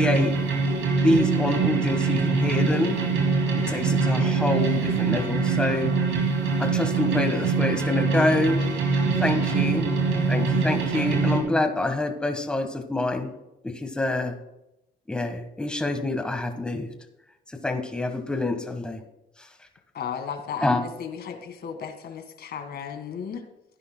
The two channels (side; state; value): both; normal; correlation 0.60